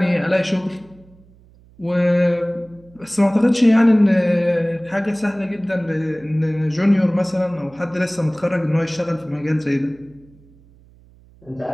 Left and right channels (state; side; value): noise; right; hum, 27 dB below the sound